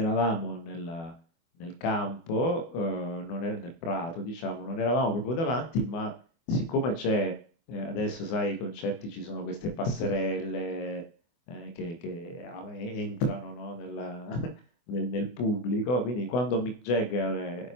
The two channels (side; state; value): right; late; 24 ms